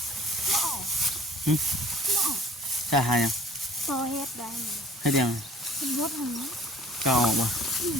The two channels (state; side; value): normal; both; correlation 0.52